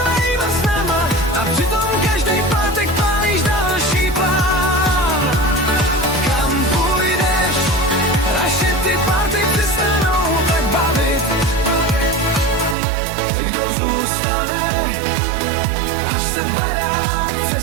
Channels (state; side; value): drops out; left; at 12.8 s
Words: snama a přitom každý pátek pálíš další plán. Kam půjdeš, až se ty party přestanou tak bavit? Kdo zůstane, až se barák